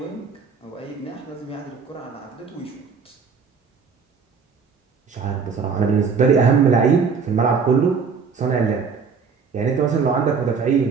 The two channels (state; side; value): quieter; left; 5.6 dB